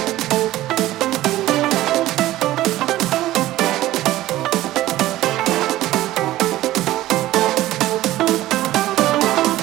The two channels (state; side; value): quieter; left; 15.5 dB